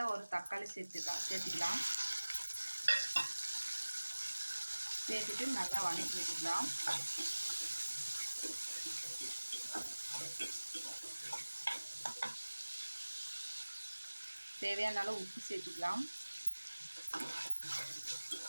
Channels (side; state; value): both; inverted; correlation -1.00